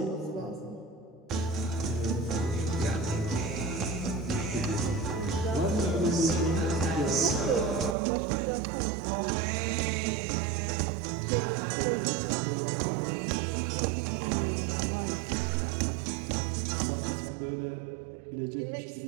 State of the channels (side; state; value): left; drops out; at 8.0 s